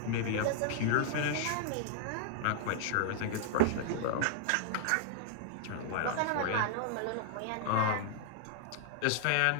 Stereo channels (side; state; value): both; different; correlation -0.01